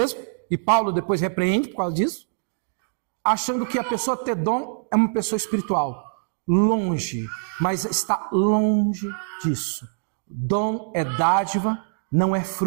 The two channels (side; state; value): left; silent; digital silence